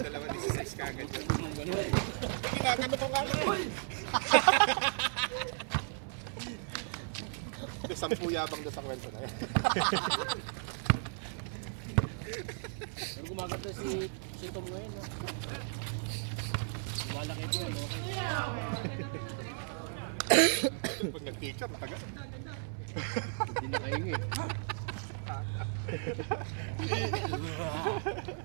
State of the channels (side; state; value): left; silent; 54 dB below the other